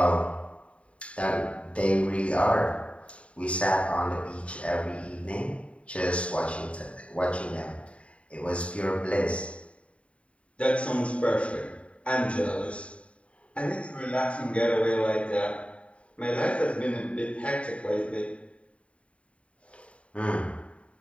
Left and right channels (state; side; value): late; right; 0.063 ms